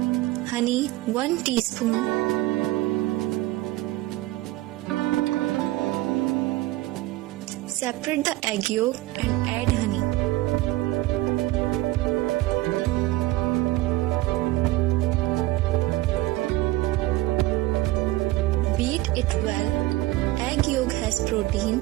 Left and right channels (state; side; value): quieter; left; 17.9 dB